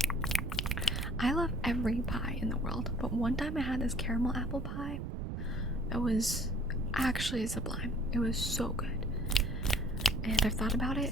I love every pie in the world, but one time I had this caramel apple pie that was actually sublime. It was so good. And I've thought about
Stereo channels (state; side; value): noise; right; rumble, 4 dB below the sound